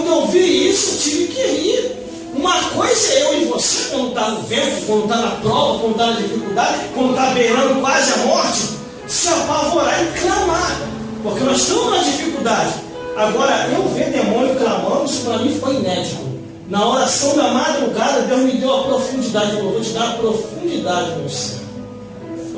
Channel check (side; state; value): both; identical; correlation 1.00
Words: eu vi isso, eu tive que rir. Uma coisa é eu e você, quando está no vento, quando está na prova, quando está na dificuldade, quando está beirando quase a morte, se apavorar e clamar, porque nós estamos na dificuldade. Agora, eu ver demônio clamando, isso para mim foi inédito. Na oração da madrugada, Deus me deu a profundidade. Eu vou te dar a profundidade, meu céu,